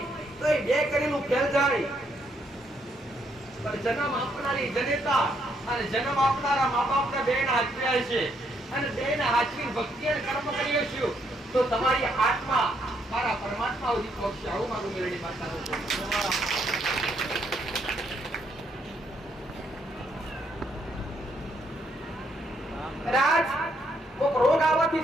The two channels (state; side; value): normal; both; correlation 0.73